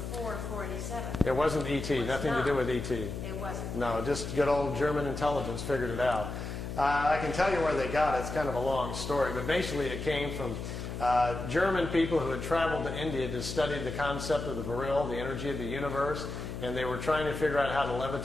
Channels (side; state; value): left; noise; hum, 6 dB below the sound